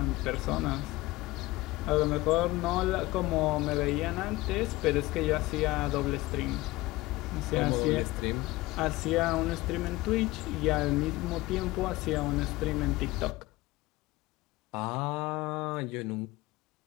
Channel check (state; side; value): quieter; right; 19.7 dB